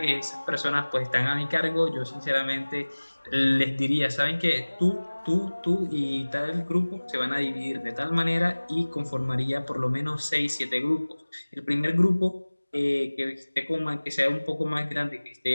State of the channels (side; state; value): both; inverted; correlation -1.00